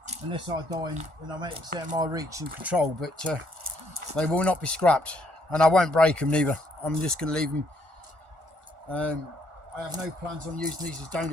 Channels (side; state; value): left; late; 1.4 ms